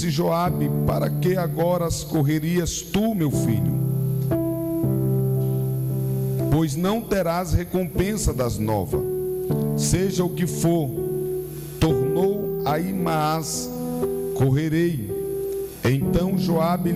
Joabe: Para que agora correrias tu, meu filho? Pois não terás recompensa das novas. Seja o que for, tornou Ahimaás: Correrei. Então Joabe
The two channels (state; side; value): identical; both; correlation 1.00